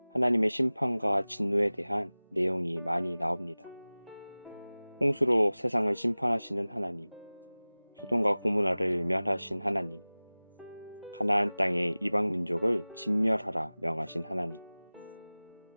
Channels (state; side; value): inverted; both; correlation -0.99